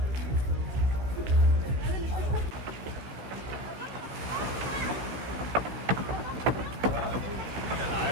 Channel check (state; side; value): late; left; 16 ms